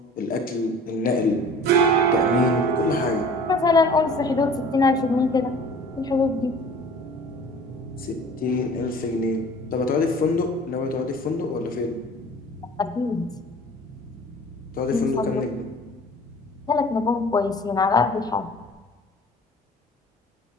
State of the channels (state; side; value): normal; both; correlation 0.46